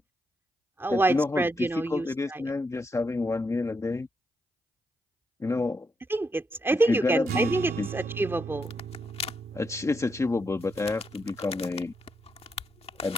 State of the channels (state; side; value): normal; both; correlation 0.81